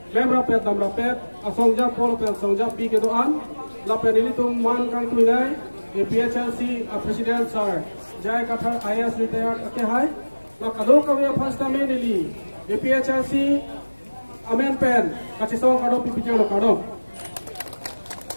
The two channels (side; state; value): both; inverted; correlation -1.00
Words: Lem rapet dam rapet asong Japon pen asong Jap bi ke doan. La pen ini tum man kang tu nai. APHLC President Sir Jai Kathar IAS retired ke hai. La kado kami first time ni. APHLC Amen pen kacitong kado pipijau lo kado.